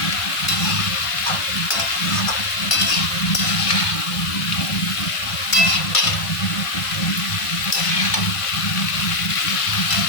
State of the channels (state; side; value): late; right; 1.5 ms